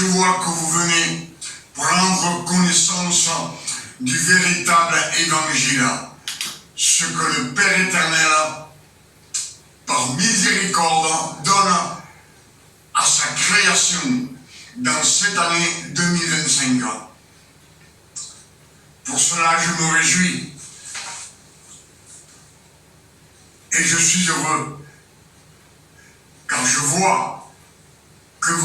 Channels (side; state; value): both; identical; correlation 1.00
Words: vois que vous venez prendre connaissance du véritable évangile, ce que le Père éternel, par miséricorde, donne à sa création dans cette année 2025. Pour cela, je me réjouis et je suis heureux, car je vois que